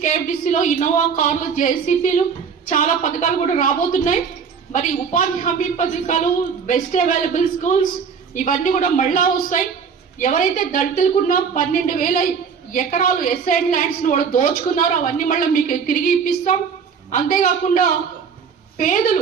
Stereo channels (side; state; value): left; quieter; 6.3 dB